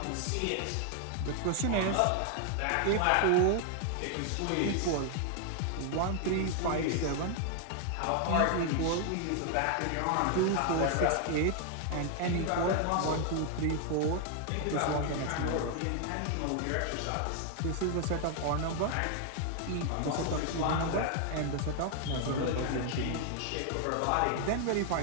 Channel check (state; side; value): different; both; correlation 0.00